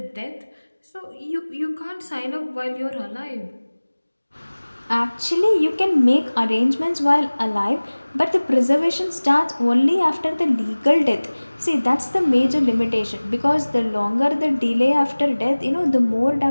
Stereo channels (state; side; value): inverted; both; correlation -1.00